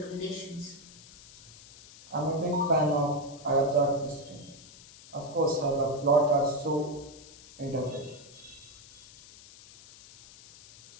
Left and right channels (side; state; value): left; noise; hiss, 20 dB below the sound